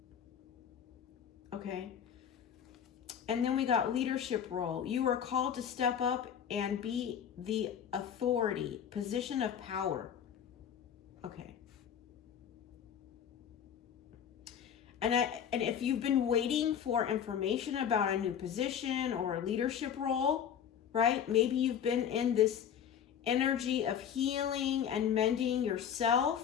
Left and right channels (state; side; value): quieter; right; 8.6 dB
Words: Okay. And then we got leadership role. You are called to step up and be the authority, position of power. Okay. And if you've been waiting for information about a new position or a leadership role, right? Maybe you've been in this energy of healing and mending